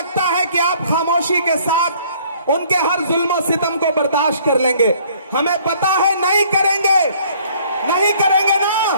है कि आप खामोशी के साथ उनके हर जुल्म सितम को बर्दाश्त कर लेंगे। हमें पता है नहीं करेंगे, नहीं करेंगे ना,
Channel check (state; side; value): inverted; both; correlation -0.59